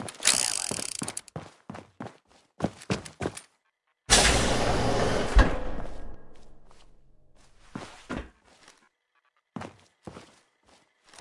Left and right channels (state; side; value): identical; both; correlation 1.00